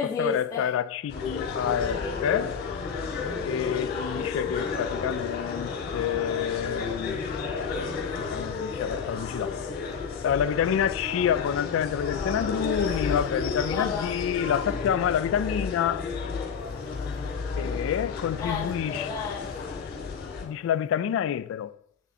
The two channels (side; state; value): right; quieter; 7.0 dB